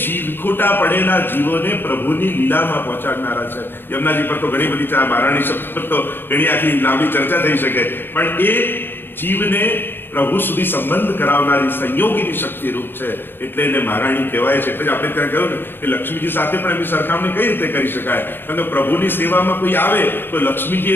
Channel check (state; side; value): late; right; 0.098 ms